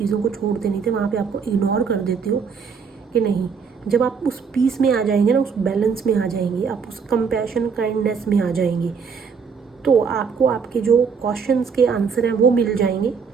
को छोड़ते नहीं थे, वहाँ पे आपको इग्नोर कर देते हो कि नहीं, जब आप उस पीस में आ जाएंगे ना, उस बैलेंस में आ जाएंगे, आप उस कंपैशन, काइंडनेस में आ जाएंगे, तो आपको आपके जो क्वेश्चंस के आंसर हैं वो मिल जाएंगे।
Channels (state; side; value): quieter; left; 5.9 dB